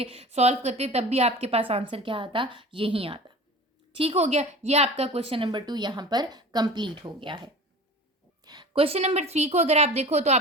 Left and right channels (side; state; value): both; normal; correlation 0.38